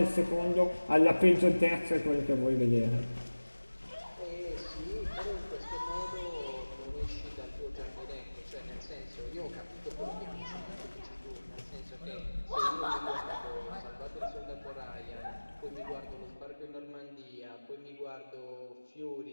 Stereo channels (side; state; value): both; inverted; correlation -1.00